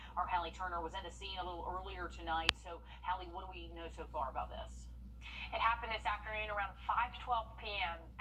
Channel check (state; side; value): identical; both; correlation 1.00